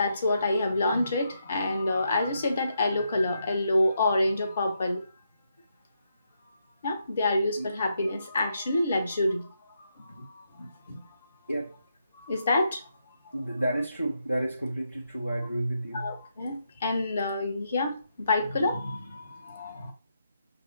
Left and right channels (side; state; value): both; inverted; correlation -0.80